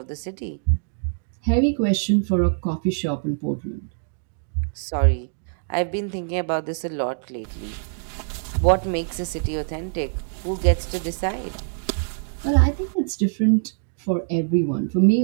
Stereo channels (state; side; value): silent; left; digital silence